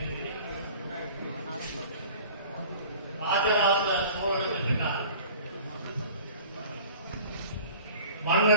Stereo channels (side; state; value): both; inverted; correlation -0.44